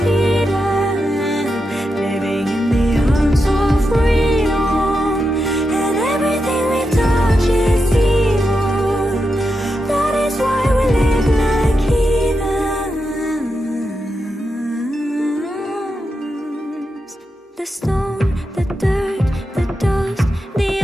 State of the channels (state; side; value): normal; both; correlation 0.87